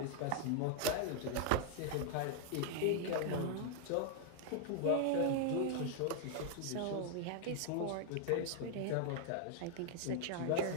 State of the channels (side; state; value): both; different; correlation 0.00